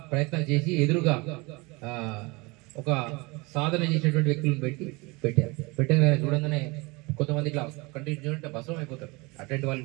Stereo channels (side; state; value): left; quieter; 25.7 dB